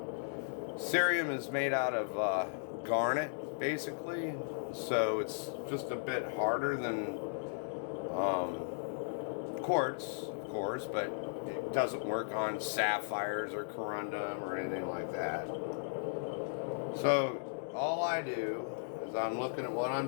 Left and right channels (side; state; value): right; silent; digital silence